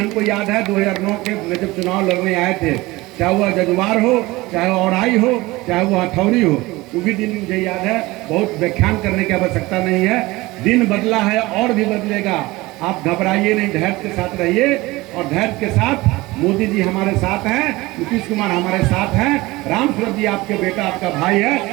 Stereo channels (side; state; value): left; quieter; 20.6 dB